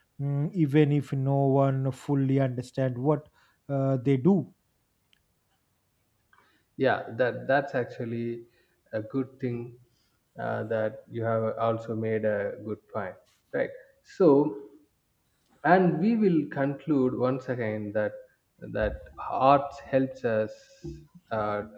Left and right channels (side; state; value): both; identical; correlation 1.00